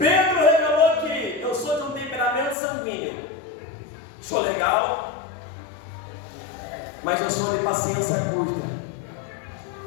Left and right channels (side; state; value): right; drops out; at 2.6 s